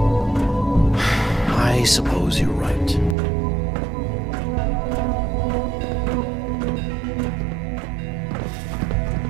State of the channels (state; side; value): drops out; left; at 3.2 s